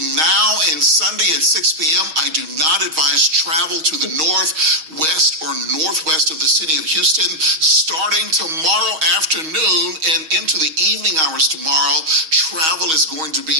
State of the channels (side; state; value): left; late; 6.3 ms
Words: now and Sunday at 6 p.m., I do not advise travel to the northwest or northwest of the city of Houston. Starting tomorrow afternoon and into the evening hours tomorrow, travel is going to be